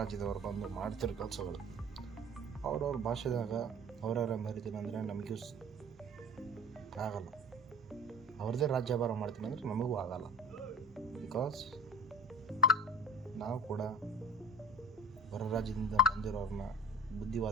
ಬಂದು ಮಾಡ್ತಿರೋ ಕೆಲಸಗಳು ಅವ್ರವ್ರ ಭಾಷೆದಾಗ ಅವರವರ ಮರಿತೀನಿ ಅಂದರೆ ನಮಗೂ ಆಗಲ್ಲ. ಅವ್ರದ್ದೇ ರಾಜ್ಯಭಾರ ಮಾಡ್ತೀನಿ ಅಂದರೆ ನಮಗೂ ಆಗಲ್ಲ. ಬಿಕಾಸ್ ನಾವು ಕೂಡ ಹೊರ ರಾಜ್ಯದಿಂದ ಬಂದಿರೋರನ್ನ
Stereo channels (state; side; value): normal; both; correlation 0.40